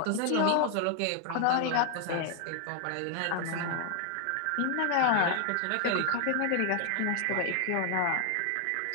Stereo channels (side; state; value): both; different; correlation 0.00